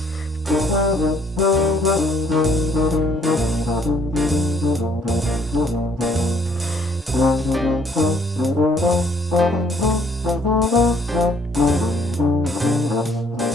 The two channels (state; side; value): normal; both; correlation 0.63